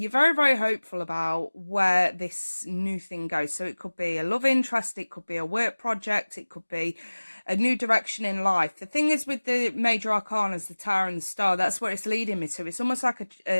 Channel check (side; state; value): both; inverted; correlation -1.00